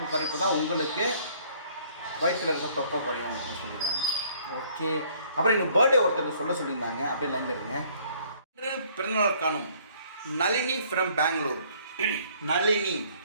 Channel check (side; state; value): both; inverted; correlation -0.60